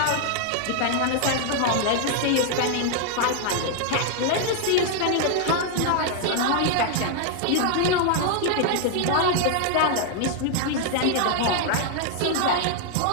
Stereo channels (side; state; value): both; different; correlation 0.00